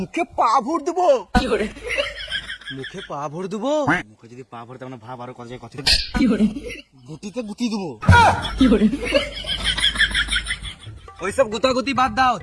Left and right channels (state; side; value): identical; both; correlation 1.00